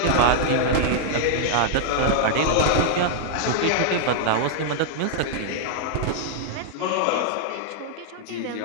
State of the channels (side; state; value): both; different; correlation -0.01